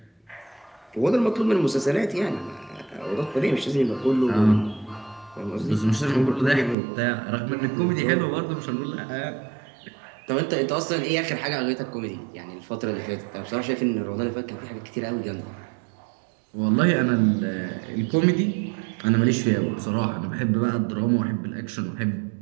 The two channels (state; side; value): drops out; left; at 6.8 s